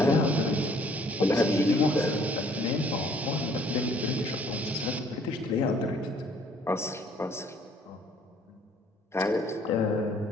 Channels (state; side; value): normal; both; correlation 0.60